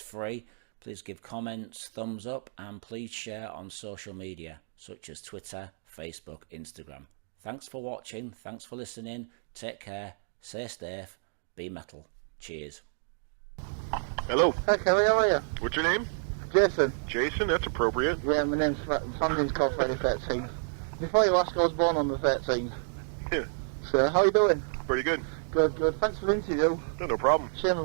Please give comments, thumbs up, and please share on social media such as Twitter, Facebook, Instagram. Thanks for watching, thanks for listening, take care, stay safe, be metal. Cheers. Hello. Hi Kerry, how are you? What's your name? Jason. Jason, that's appropriate. Yeah, my family's called Friday 13th. Before you ask, I was born on the 13th. Yeah. So, how are you doing? Pretty good. Good, good. Thanks for the interview. No problem. Shame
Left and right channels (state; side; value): silent; left; digital silence